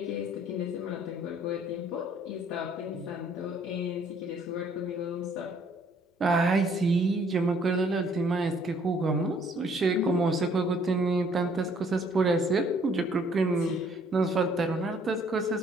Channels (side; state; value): both; normal; correlation 0.62